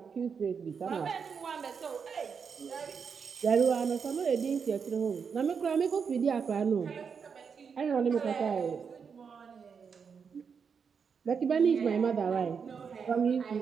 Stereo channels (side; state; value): left; quieter; 6.2 dB